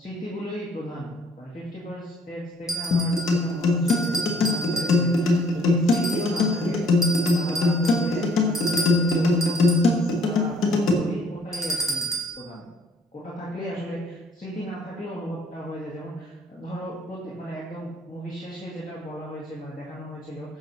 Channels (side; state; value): both; normal; correlation 0.60